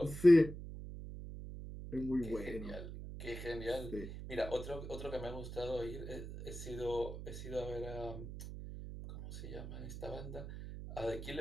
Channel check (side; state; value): right; noise; hum, 9 dB below the sound